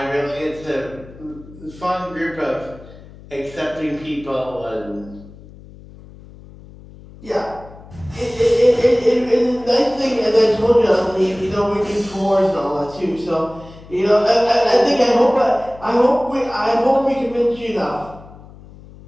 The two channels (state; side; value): noise; left; hum, 20 dB below the sound